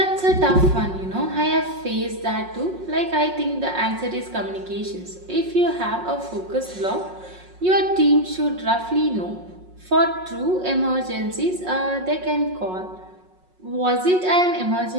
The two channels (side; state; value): left; late; 5.5 ms